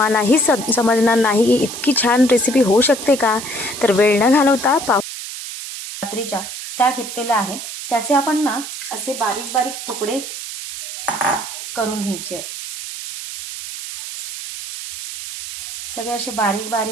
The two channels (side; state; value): right; noise; hiss, 8 dB below the sound